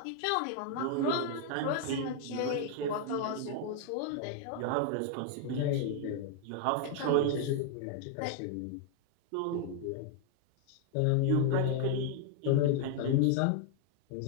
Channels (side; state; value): both; different; correlation 0.00